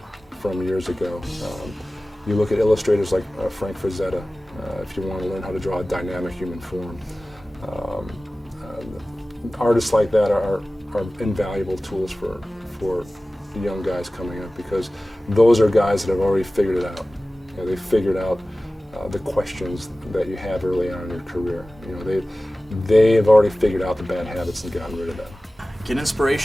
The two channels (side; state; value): both; normal; correlation 0.97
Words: from years ago. You look at illustrators like Frank Frazetta, if you want to learn how to draw a dynamic human form. Artists like that are invaluable tools for young guys coming up, because those are guys that have already figured it out. They figured out the questions that you have early on in your career. They have already figured out the bad habits and gotten rid of them. Get